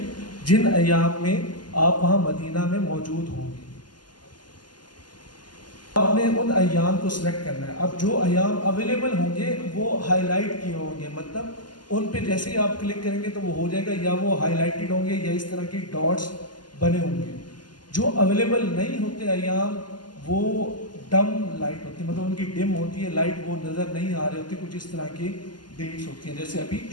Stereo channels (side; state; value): right; late; 0.71 ms